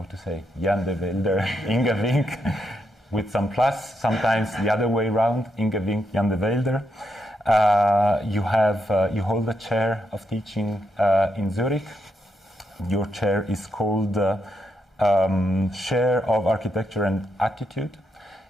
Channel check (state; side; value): normal; both; correlation 0.81